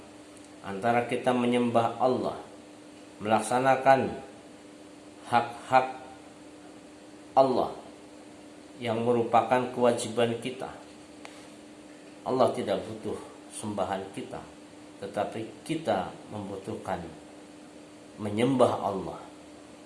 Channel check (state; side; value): identical; both; correlation 1.00